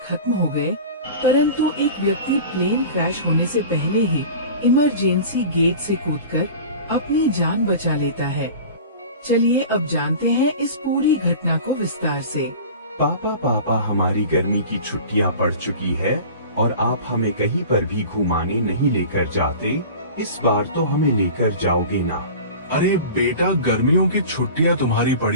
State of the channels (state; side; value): inverted; both; correlation -0.37